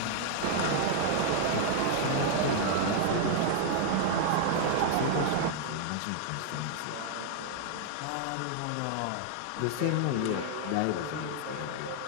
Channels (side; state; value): both; different; correlation 0.00